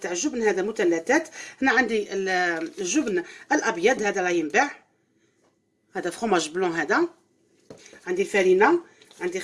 تاع الجبن، هذا مثلثات. هنا عندي الجبن الابيض، هذا راه ينباع، هذا فروماج بلون. هذا عندي الفارينه، عندي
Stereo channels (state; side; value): identical; both; correlation 1.00